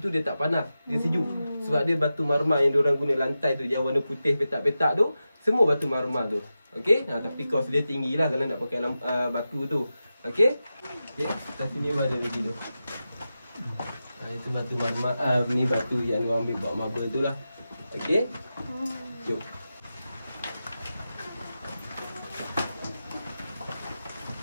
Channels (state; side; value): inverted; both; correlation -0.92